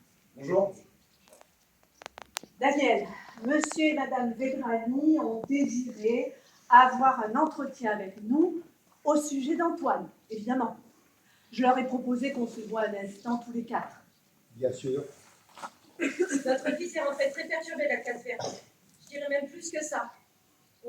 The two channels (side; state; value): both; identical; correlation 1.00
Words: Bonjour. Daniel, monsieur et madame Vedrani ont désiré avoir un entretien avec nous au sujet d'Antoine, évidemment. Je leur ai proposé qu'on se voit un instant tous les quatre. Bien sûr. Notre fils est rentré très perturbé la classe verte. Je dirais même plus que ça.